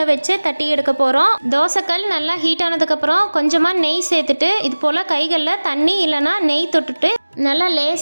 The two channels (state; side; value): inverted; both; correlation -1.00